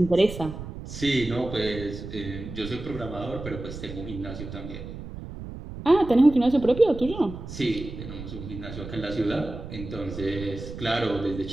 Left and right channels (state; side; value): noise; right; rumble, 10 dB below the sound